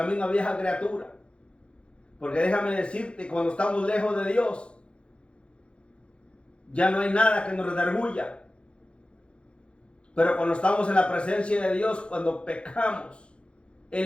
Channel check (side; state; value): right; late; 0.058 ms